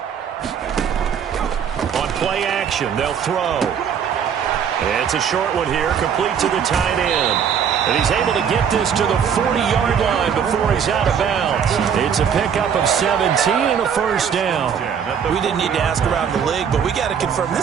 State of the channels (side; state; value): left; quieter; 7.7 dB